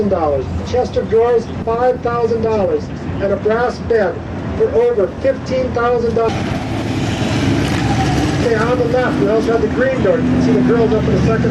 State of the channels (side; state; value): both; identical; correlation 1.00